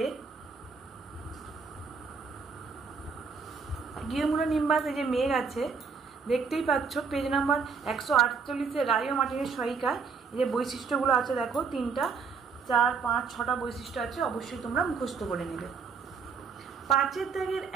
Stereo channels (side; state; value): left; quieter; 5.3 dB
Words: কিউমুলোনিম্বাস এই যে মেঘ আছে দেখতেই পাচ্ছ, পেজ নাম্বার 148-এ রায় ও মার্টিনের সহায়িকায় এই যে বৈশিষ্ট্যগুলো আছে দেখো 3টা 4, 5, 6টা বৈশিষ্ট্য আছে, অবশ্যই তোমরা মুখস্থ করে নেবে। 5-এর দাগের